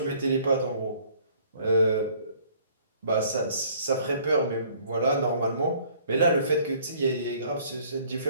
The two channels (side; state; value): both; inverted; correlation -0.57